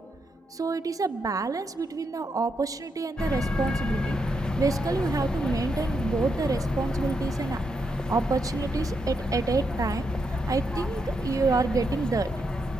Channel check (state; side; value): normal; both; correlation 0.81